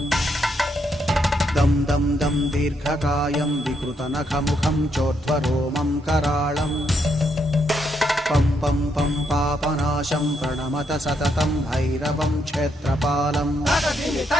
दं दं दं दीर्घकायं विकृतनखमुखं चोर्ध्वरोमं कराळं पं पं पं पापनाशं प्रणमत सततं भैरवं क्षेत्रपालम्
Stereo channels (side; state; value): both; normal; correlation 0.77